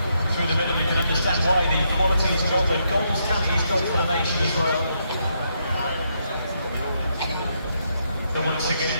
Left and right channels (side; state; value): both; inverted; correlation -0.78